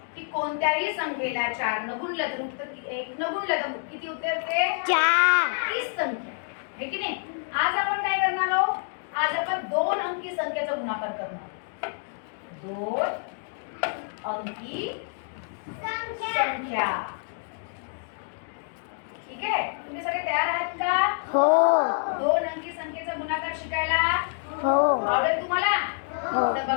की कोणत्याही संख्येला 4 न गुणलं तर उत्तर 1 न गुणलं तर किती उत्तर येते? 4 तीच संख्या आहे की नाही. आज आपण काय करणार आहोत? आज आपण 2 अंकी संख्येचा गुणाकार करणार. 2 अंकी संख्या. ठीक आहे. तुम्ही सगळे तयार आहात का? हो 2 अंकी संख्येचा गुणाकार शिकायला हो आवडेल तुम्हाला? हो. तर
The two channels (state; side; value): silent; right; digital silence